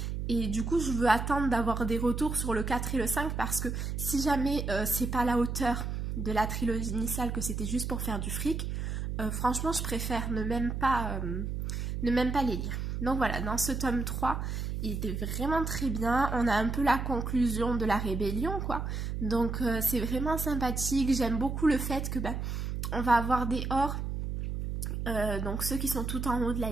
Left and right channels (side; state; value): right; noise; hum, 3 dB below the sound